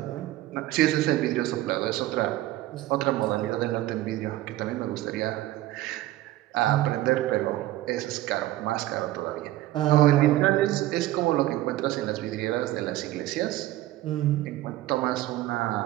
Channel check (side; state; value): left; quieter; 15.7 dB